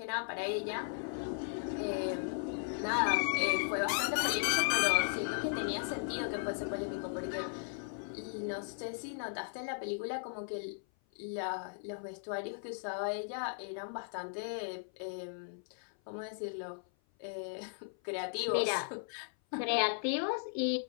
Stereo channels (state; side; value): silent; right; 53 dB below the other